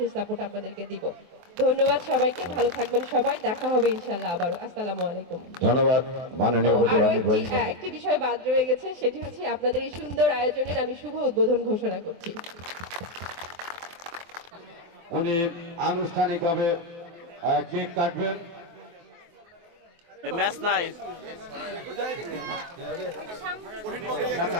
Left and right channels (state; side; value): late; left; 23 ms